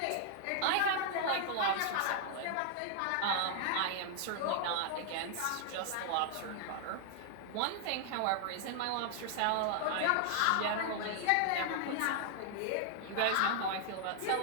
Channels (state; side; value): different; both; correlation -0.01